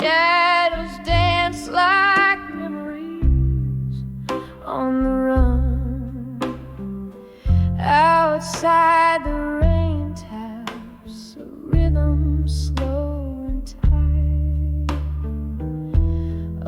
dance like memories on the run. Outside the rain taps a rhythm slow and tight.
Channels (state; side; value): identical; both; correlation 1.00